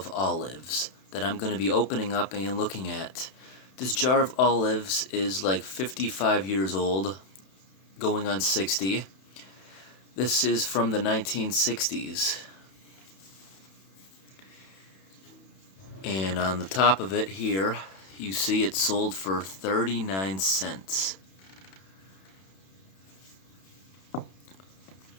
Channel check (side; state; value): right; late; 31 ms